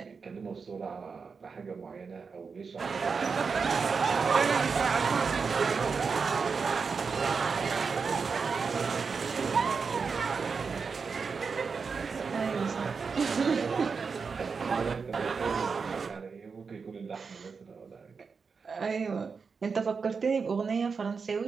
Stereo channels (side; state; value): left; quieter; 5.3 dB